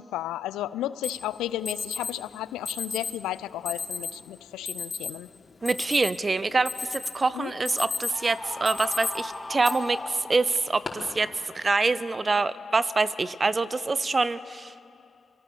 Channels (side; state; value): both; normal; correlation 0.89